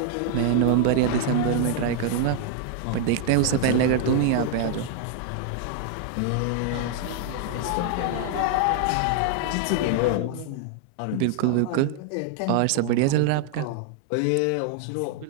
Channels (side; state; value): both; different; correlation 0.00